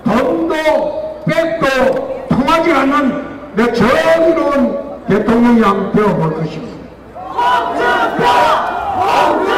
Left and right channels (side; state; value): both; identical; correlation 1.00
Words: 돈도 백도 통하지 않는 내 정의로운 대통령이 한번 되어볼 것입니다. 홍준표!